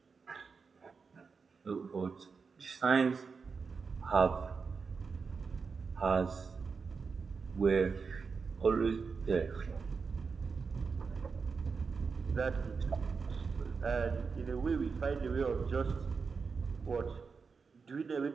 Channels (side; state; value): left; quieter; 5.1 dB